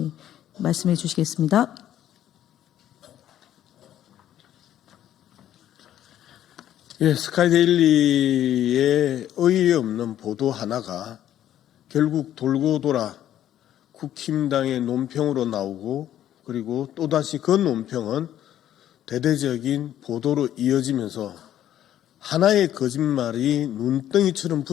말씀해 주시겠습니다. 예, 스카이데일리의 의의 없는 보도 하나가 결국 돌고 돌아 국힘당의 논평으로 나오고 그리고 또다시 그 논평은 대대적인 보도로 이어지면서 하나의 거짓말이 눈덩이처럼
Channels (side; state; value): right; quieter; 11.6 dB